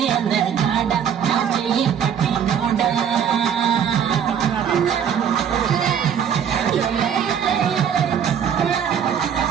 అందగాడ నా చెయ్యి పట్టినోడా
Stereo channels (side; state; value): left; quieter; 8.2 dB